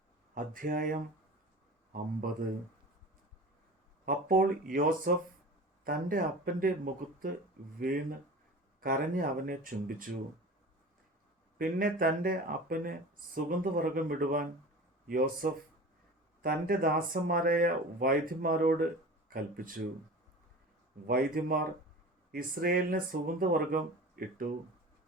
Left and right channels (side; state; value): both; normal; correlation 0.36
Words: അധ്യായം 50. അപ്പോൾ യോസഫ് തൻ്റെ അപ്പൻ്റെ മുഖത്ത് വീണ് കരഞ്ഞ് അവനെ ചുംബിച്ചു. പിന്നെ തൻ്റെ അപ്പന് സുഗന്ധവർഗം ഇടുവാൻ യോസഫ് തൻ്റെ ദാസന്മാരായ വൈദ്യന്മാരോട് കൽപ്പിച്ചു. വൈദ്യന്മാർ ഇസ്രയേലിന് സുഗന്ധവർഗം ഇട്ടു.